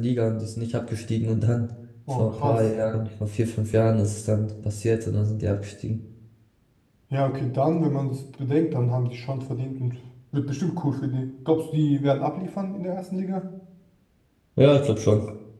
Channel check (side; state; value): both; identical; correlation 1.00